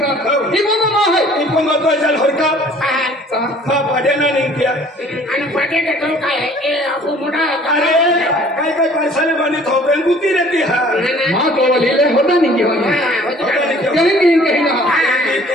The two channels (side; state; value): both; normal; correlation 0.53